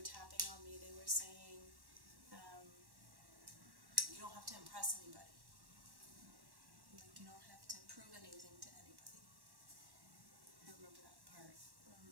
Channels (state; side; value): late; left; 1.1 ms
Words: tapping on me, they were saying, you don't have to impress anybody. Like, you don't have to prove anything to anybody. I remember that part